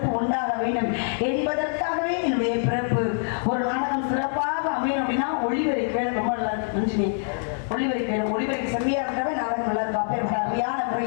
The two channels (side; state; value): right; silent; 59 dB below the other